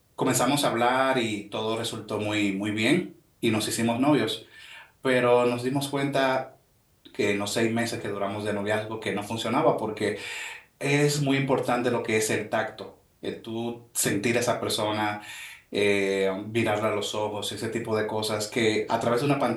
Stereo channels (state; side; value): identical; both; correlation 1.00